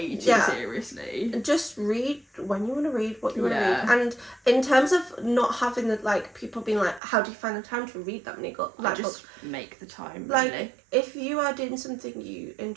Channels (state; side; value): drops out; left; at 7.0 s